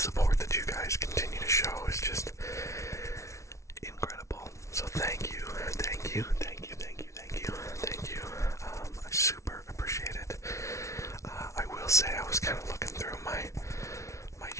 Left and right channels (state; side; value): late; right; 0.14 ms